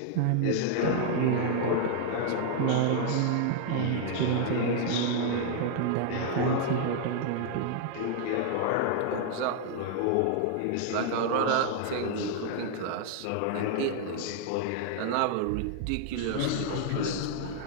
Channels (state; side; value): different; both; correlation 0.00